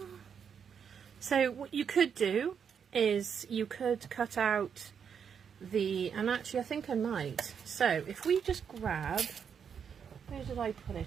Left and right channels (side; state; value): left; quieter; 7.2 dB